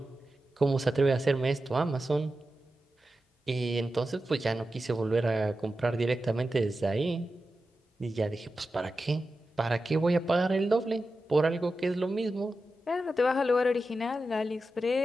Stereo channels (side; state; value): both; normal; correlation 0.91